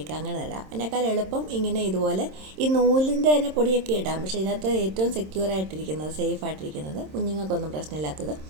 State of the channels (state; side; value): late; left; 26 ms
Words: അങ്ങനെ ഇടാം. അതിനേക്കാൾ എളുപ്പം ഇങ്ങനെ ഇതുപോലെ ഈ നൂലിൻ്റെ തന്നെ പൊടിയൊക്കെ ഇടാം. പക്ഷേ ഇതിനകത്ത് ഏറ്റവും സെക്യൂർ ആയിട്ടിരിക്കുന്നത്, സേഫ് ആയിട്ടിരിക്കുന്നത്, കുഞ്ഞുങ്ങൾക്കൊന്നും പ്രശ്നമില്ലാത്തത്